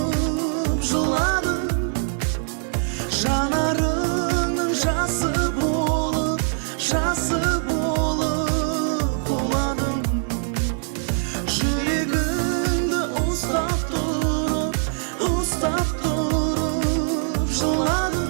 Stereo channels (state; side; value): silent; left; digital silence